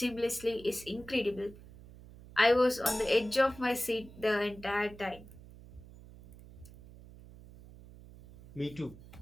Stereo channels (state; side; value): noise; right; hum, 19 dB below the sound